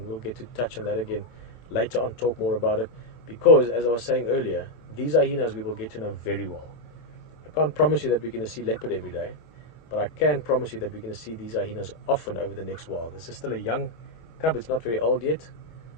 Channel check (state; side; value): late; right; 25 ms